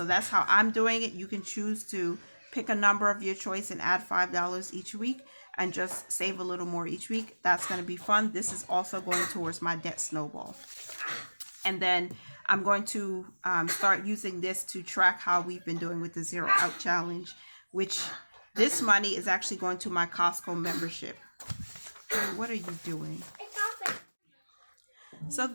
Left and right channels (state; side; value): inverted; both; correlation -1.00